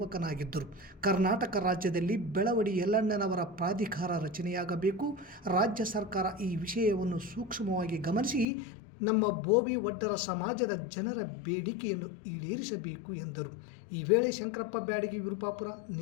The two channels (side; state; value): right; drops out; at 8.5 s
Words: ಕರ್ನಾಟಕ ರಾಜ್ಯದಲ್ಲಿ ಬೆಳವಡಿ ಯಲ್ಲಣ್ಣನವರ ಪ್ರಾಧಿಕಾರ ರಚನೆಯಾಗಬೇಕು. ರಾಜ್ಯ ಸರ್ಕಾರ ಈ ವಿಷಯವನ್ನು ಸೂಕ್ಷ್ಮವಾಗಿ ಗಮನಿಸಿ ನಮ್ಮ ಭೋವಿ ವಡ್ಡರ ಸಮಾಜದ ಜನರ ಬೇಡಿಕೆಯನ್ನು ಈಡೇರಿಸಬೇಕು ಎಂದರು. ಈ ವೇಳೆ ಶಂಕರಪ್ಪ ಬ್ಯಾಡಗಿ ವಿರುಪಾಪುರ,